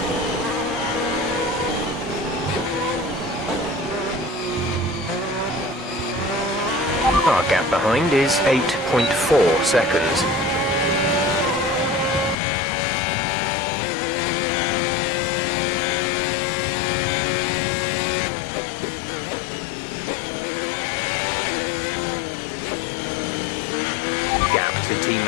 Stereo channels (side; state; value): right; drops out; at 12.4 s